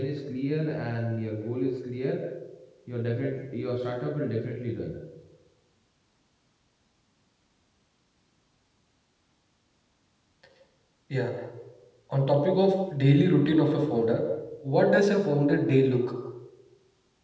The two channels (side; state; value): both; identical; correlation 1.00